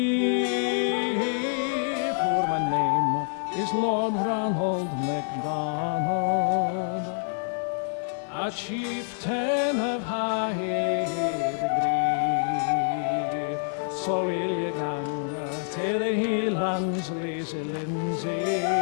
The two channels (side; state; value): right; silent; 60 dB below the other